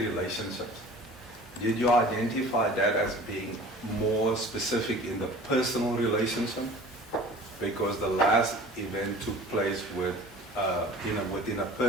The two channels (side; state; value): both; normal; correlation 0.44